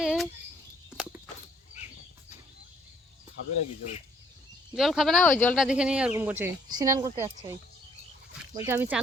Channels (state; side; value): normal; both; correlation 0.64